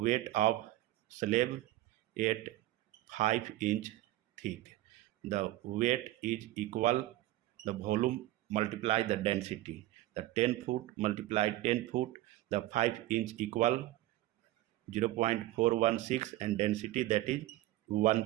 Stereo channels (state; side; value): quieter; left; 16.1 dB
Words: of slab at 5 inch thick. The weight is equal the volume multiply the density. The 10 foot multiply 10 foot, the 5 inch equal 0.416, and density, that is